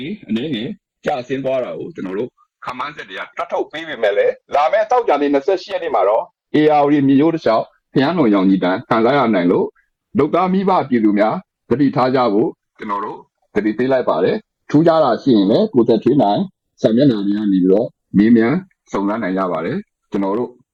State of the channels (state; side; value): identical; both; correlation 1.00